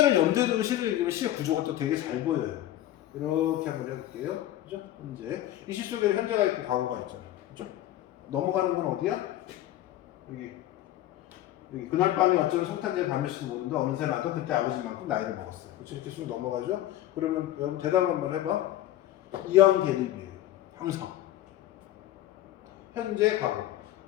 염두에 두고 시를 읽으면 시의 구조가 또 되게 잘 보여요. 이렇게 한번 해볼게요. 그죠? 현재. 이 시 속에는 현재가 있고 과거가 있잖아. 그죠? 넘어가는 건 어디야? 여기. 그날 밤에 어쩌면 성탄절 밤일지도 모른다. 어느새 나도 그때 아버지만큼 나이를 먹었어요. 그렇죠? 이렇게 쑥 넘어가죠? 그러면 여러분 대답 한번 해봐. 이형 대립이에요. 항상. 현재, 과거.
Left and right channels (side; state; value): right; quieter; 13.7 dB